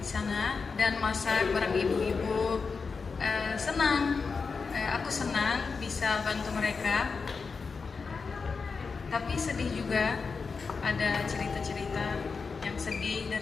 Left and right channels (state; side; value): quieter; right; 4.9 dB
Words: sana dan masak bareng ibu-ibu. Senang, aku senang bisa bantu mereka. Tapi sedih juga, ada cerita-cerita yang sedih